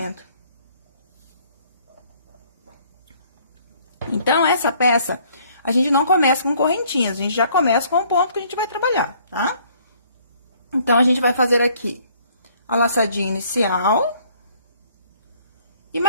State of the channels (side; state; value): both; inverted; correlation -0.61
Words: Então, essa peça, a gente não começa com correntinhas. A gente já começa com o ponto que a gente vai trabalhar, tá? Então, a gente vai fazer aqui a laçadinha inicial e